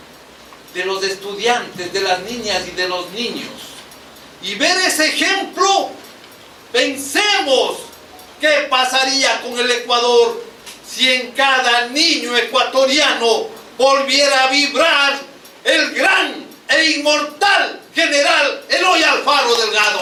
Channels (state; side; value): identical; both; correlation 1.00